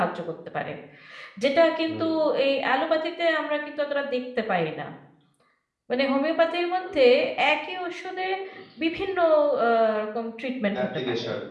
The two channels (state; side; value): identical; both; correlation 1.00